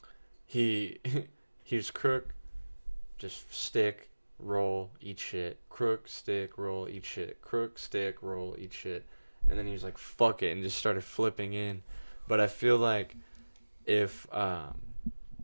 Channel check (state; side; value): inverted; both; correlation -1.00